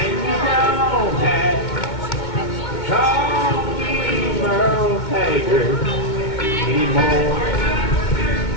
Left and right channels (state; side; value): late; right; 2.2 ms